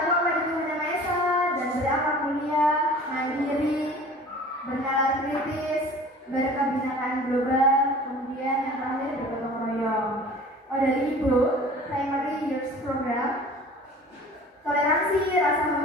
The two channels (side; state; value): both; normal; correlation 0.44